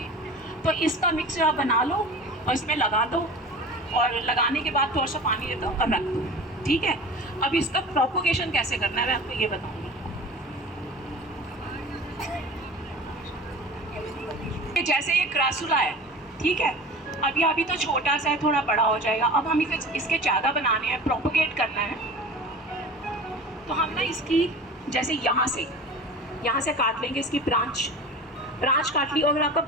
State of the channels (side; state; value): both; normal; correlation 0.37